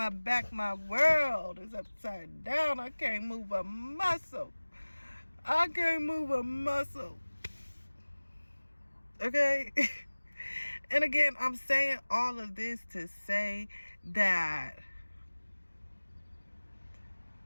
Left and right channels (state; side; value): inverted; both; correlation -1.00